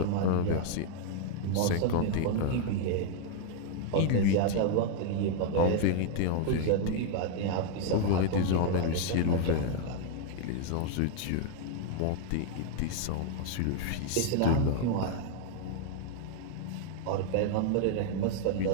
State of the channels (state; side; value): different; both; correlation 0.00